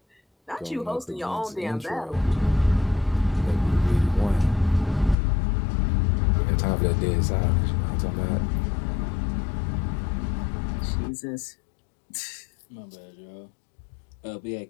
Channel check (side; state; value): right; drops out; at 5.2 s